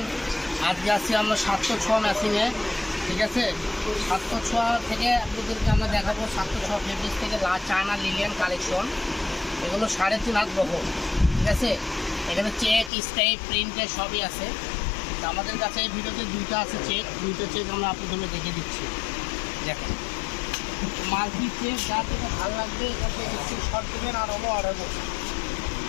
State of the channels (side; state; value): right; drops out; at 12.9 s